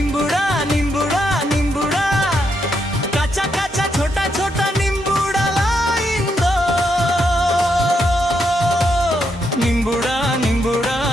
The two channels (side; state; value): both; normal; correlation 0.79